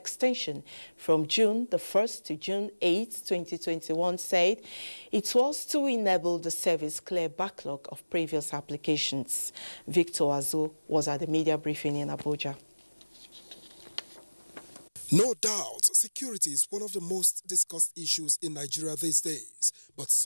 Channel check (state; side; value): inverted; both; correlation -1.00